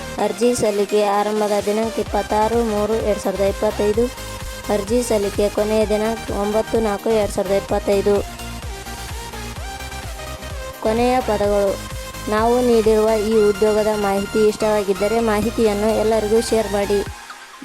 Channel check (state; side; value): identical; both; correlation 1.00